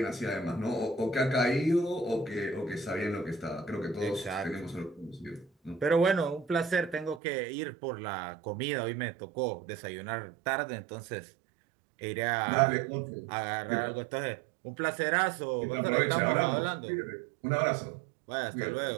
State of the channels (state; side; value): drops out; left; at 7.2 s